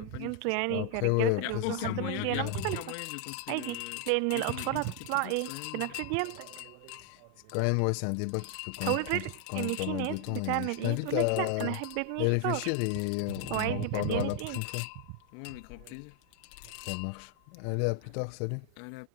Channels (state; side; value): different; both; correlation 0.00